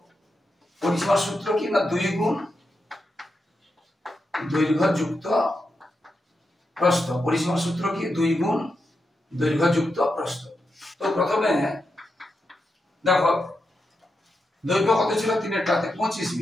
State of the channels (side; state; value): both; normal; correlation 0.87